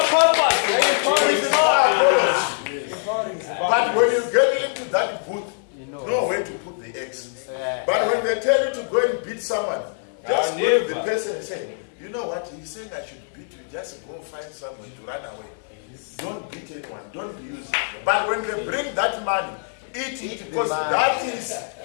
But when you get into that booth, know where to put the eggs. But when they tell you to go and beat someone, just go to the person and say, you know what, he's saying I should beat you, just go find someone to run away. Don't beat anyone, don't be used. But when they bring that money, eat it, because that is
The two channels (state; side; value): silent; right; 63 dB below the other